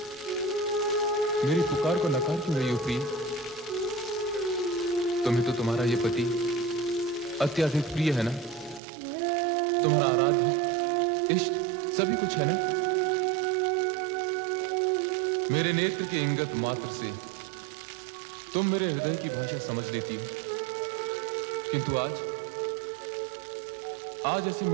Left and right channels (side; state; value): left; drops out; at 8.8 s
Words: मेरी पुकार को नकार क्यों रही हो प्रिय? तुम्हें तो तुम्हारा ये पति अत्यधिक प्रिय है ना? तुम्हारा आराध्य इष्ट सभी कुछ है ना? मेरे नेत्र के इंगत मात्र से तुम मेरे हृदय की भाषा समझ लेती हो, किंतु आज ऐसे